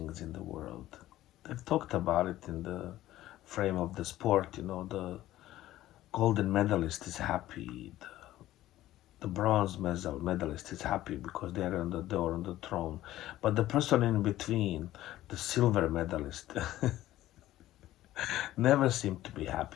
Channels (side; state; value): right; quieter; 14.7 dB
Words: in the world. They've talked about it in the frame of the sport. The golden medalist is happy. The bronze medalist is happy because they're on the door, on the throne. But the person in between, the silver medalist, never seemed to be